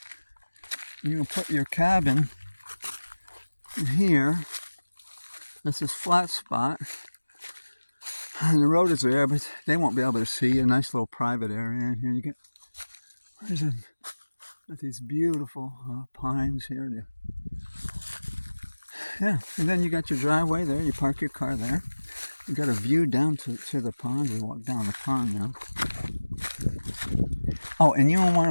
cabin in here. This is flat spot. And the road is there, but they won't be able to see. A nice little private area in here. You get got these beautiful pines here. Yeah, and then you got your driveway there. You park your car there. You got a view down to the pond. We walk down the pond now. Oh, and you don't want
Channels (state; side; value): inverted; both; correlation -1.00